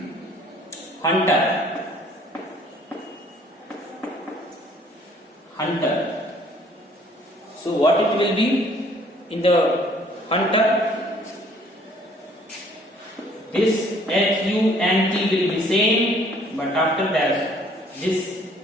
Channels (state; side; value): normal; both; correlation 0.59